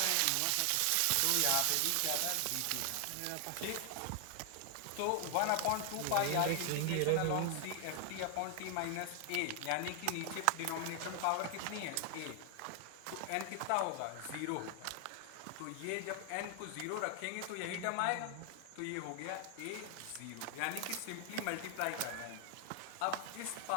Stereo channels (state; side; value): different; both; correlation 0.00